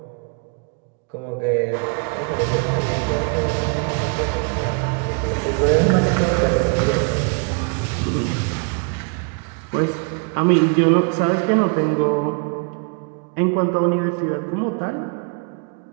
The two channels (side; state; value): left; quieter; 36.2 dB